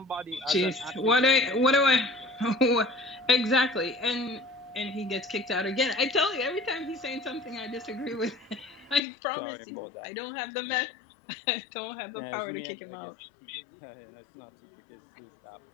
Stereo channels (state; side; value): drops out; right; at 9.0 s